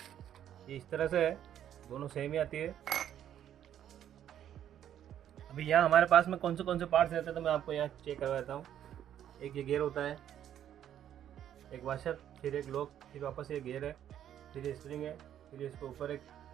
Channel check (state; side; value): quieter; left; 10.5 dB